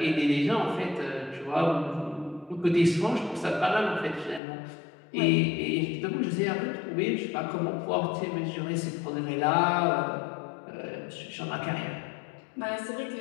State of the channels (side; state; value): right; drops out; at 4.4 s